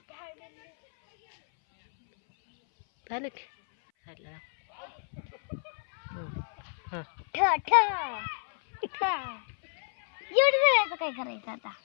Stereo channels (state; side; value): silent; right; 58 dB below the other